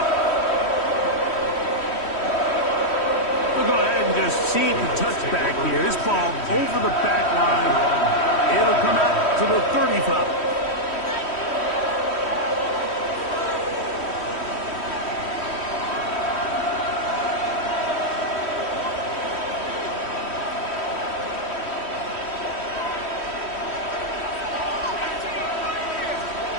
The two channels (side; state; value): right; late; 3.1 ms